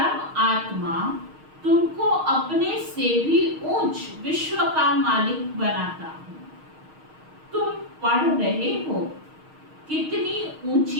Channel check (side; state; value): left; late; 6.4 ms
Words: आत्मा तुमको अपने से भी ऊंच विश्व का मालिक बनाता हूँ। तुम पढ़ रहे हो, कितनी